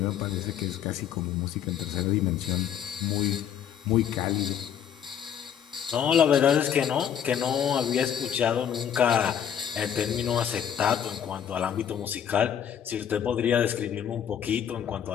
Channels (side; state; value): right; quieter; 9.0 dB